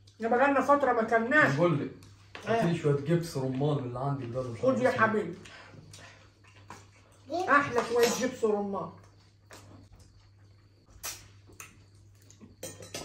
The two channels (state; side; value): identical; both; correlation 1.00